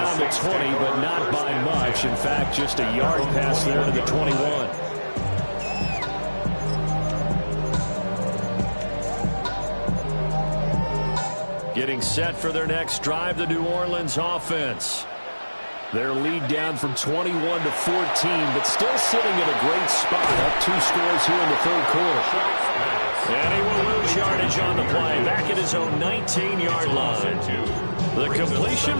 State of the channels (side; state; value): both; inverted; correlation -1.00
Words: the 20, but not by much. In fact, just a yard pass there to the 21. Getting set for their next drive, the New Orleans offense. Their lead down from 21 to 14, but still sitting in a great spot. Up 2 scores here in the 3rd quarter. And he will lose yardage on the play, back at his own 19-yard line. The completion,